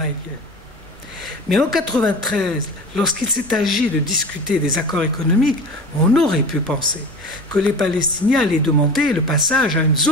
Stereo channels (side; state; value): both; normal; correlation 0.34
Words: Mais en 1993, lorsqu'il s'est agi de discuter des accords économiques, on aurait pu penser que les Palestiniens allaient demander le passage à une